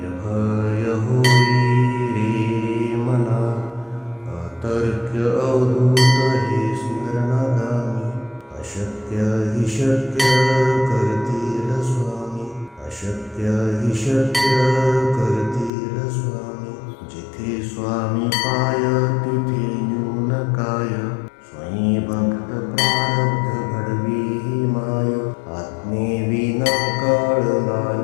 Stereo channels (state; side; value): drops out; right; at 15.7 s